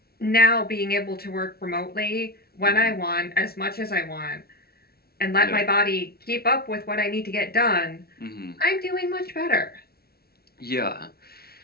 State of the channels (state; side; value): late; right; 0.45 ms